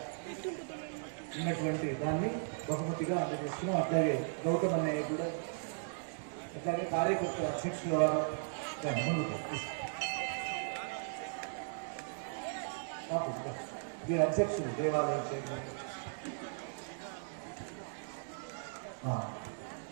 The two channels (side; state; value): left; silent; digital silence